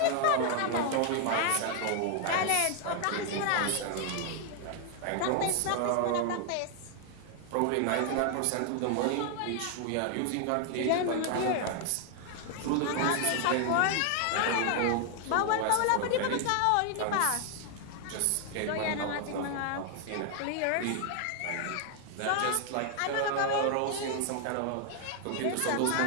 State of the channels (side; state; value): both; different; correlation 0.00